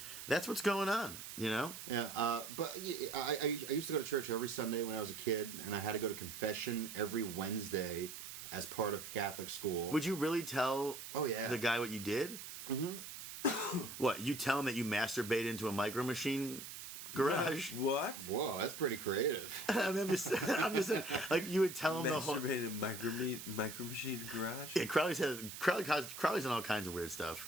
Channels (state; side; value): noise; right; hiss, 10 dB below the sound